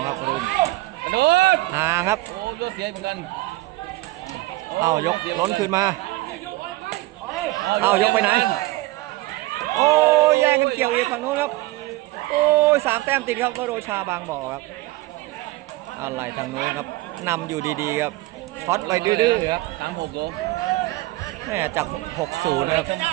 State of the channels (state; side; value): quieter; left; 19.1 dB